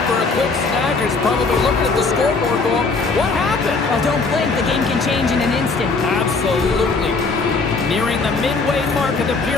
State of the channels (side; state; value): right; quieter; 4.1 dB